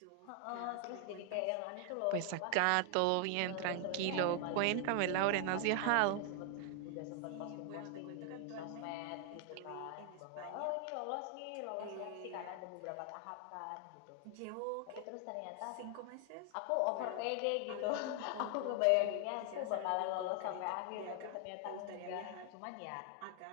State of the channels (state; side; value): different; both; correlation 0.00